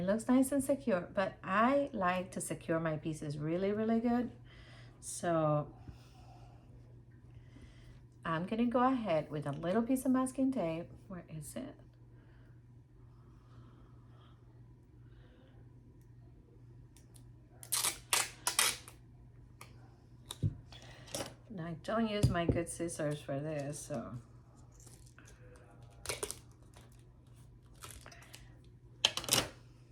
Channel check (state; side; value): identical; both; correlation 1.00